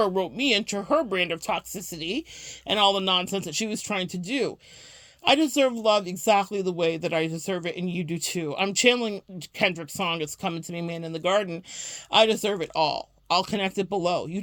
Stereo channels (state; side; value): identical; both; correlation 1.00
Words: rope me into her brand of toxicity and all the nonsense that she was trying to do. I deserve love exactly the way that I deserve it, and you do too. I'm channeling Kendrick's song, It's Coming to Me, Man in the Garden. I deserve it all. I'll connect it below. You